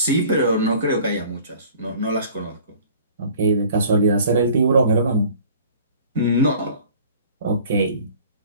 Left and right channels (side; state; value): both; inverted; correlation -0.49